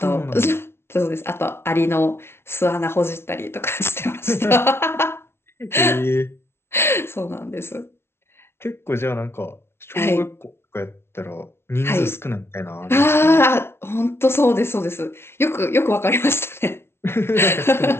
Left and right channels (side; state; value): right; late; 0.12 ms